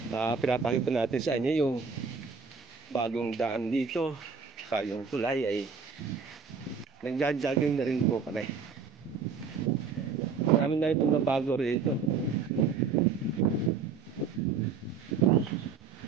pinapakita natin sa inyo yung bagong daan dito, yung tulay ay nagja-jogging na rin po kami. Marami na itong nabago rito.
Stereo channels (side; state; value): left; quieter; 5.6 dB